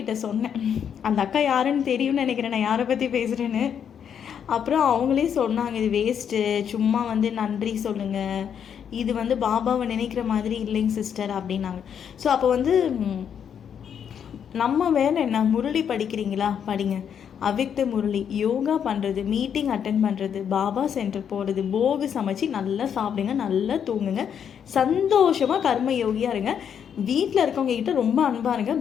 சொன்னேன், அந்த அக்கா யாருன்னு தெரியும்னு நினைக்கிறேன் நான் யாரை பற்றி பேசுகிறேன்னு. அப்புறம் அவங்களே சொன்னாங்க இது வேஸ்ட்டு, சும்மா வந்து நன்றி சொல்லுங்கள், இது வந்து பாபாவை நினைக்கிற மாதிரி இல்லைங்க சிஸ்டர் அப்படின்னாங்க. ஸோ அப்போ வந்து நம்ம வேலை என்ன, முரளி படிக்கிறீங்களா படிங்க, அவ்யக்த முரளி யோகா பண்ணுறது, மீட்டிங் அட்டென்ட் பண்ணுறது, பாபா சென்டர் போகிறது, போகு சமைச்சு நல்லா சாப்பிடுங்க, நல்லா தூங்குங்க, சந்தோஷமாக கர்ம யோகியாக இருங்க, வீட்டில் இருக்கவங்க கிட்ட ரொம்ப அன்பாக இருங்க,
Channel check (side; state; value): right; quieter; 8.1 dB